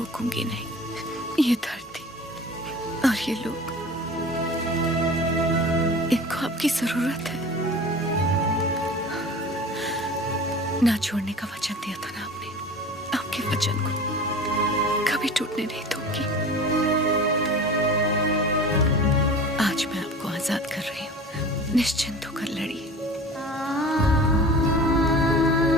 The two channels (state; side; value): normal; both; correlation 0.39